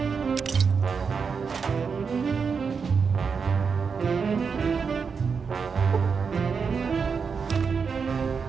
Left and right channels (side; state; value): left; quieter; 5.7 dB